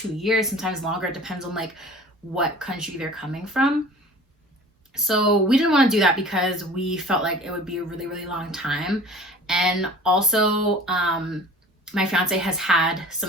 years, sometimes longer. It depends on what country they're coming from. So we didn't want to do that because we felt like it would be a really, really long time. And also, my fiance has had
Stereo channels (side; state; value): both; normal; correlation 0.43